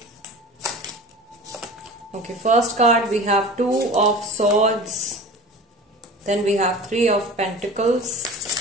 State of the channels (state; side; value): normal; both; correlation 0.37